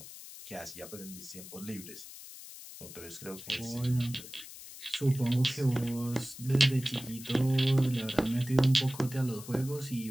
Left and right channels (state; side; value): noise; left; hiss, 14 dB below the sound